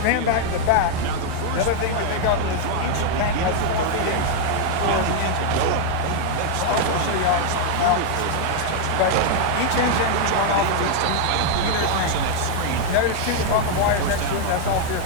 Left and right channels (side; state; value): both; different; correlation 0.00